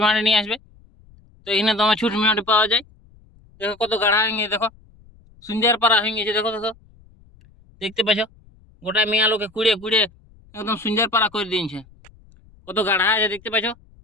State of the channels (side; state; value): left; noise; rumble, 28 dB below the sound